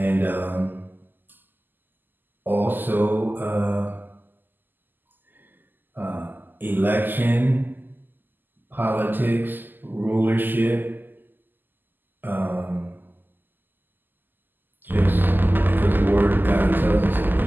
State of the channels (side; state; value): left; late; 0.090 ms